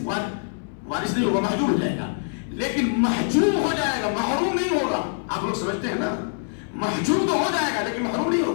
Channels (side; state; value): right; silent; digital silence